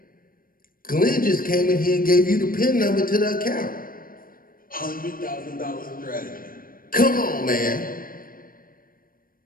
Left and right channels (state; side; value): late; right; 0.41 ms